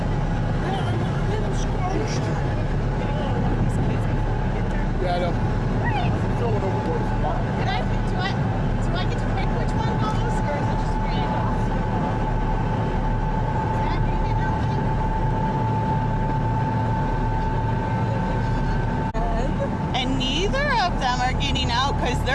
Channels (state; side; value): identical; both; correlation 1.00